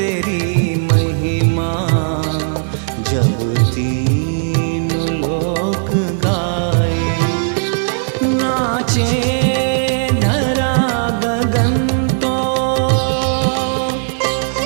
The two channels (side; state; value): left; silent; 65 dB below the other